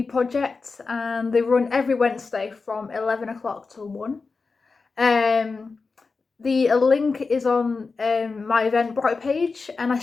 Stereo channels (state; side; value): quieter; right; 4.3 dB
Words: project and they run every Wednesday from 11 o'clock till 1. The link is on my Eventbrite page and I